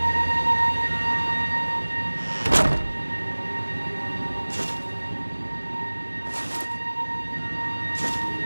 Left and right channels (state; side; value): inverted; both; correlation -1.00